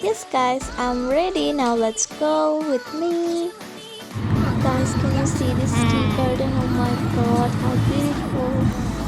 guys, I'm ready. Now let's go with me. Guys, can you see this tea garden? Oh my god, how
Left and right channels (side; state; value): both; identical; correlation 1.00